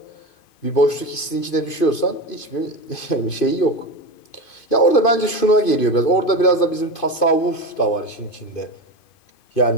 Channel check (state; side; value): late; right; 2.5 ms